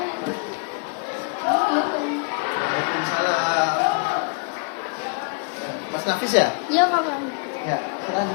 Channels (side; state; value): right; quieter; 38.7 dB